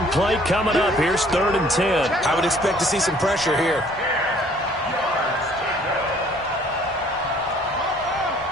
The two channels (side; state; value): both; normal; correlation 0.58